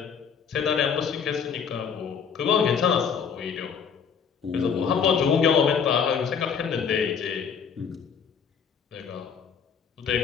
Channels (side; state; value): right; quieter; 6.8 dB